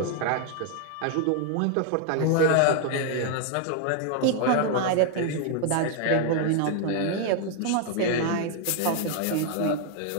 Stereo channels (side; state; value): both; different; correlation 0.00